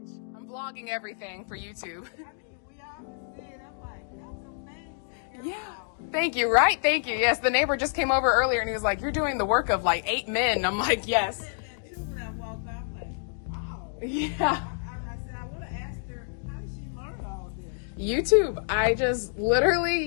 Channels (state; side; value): silent; right; digital silence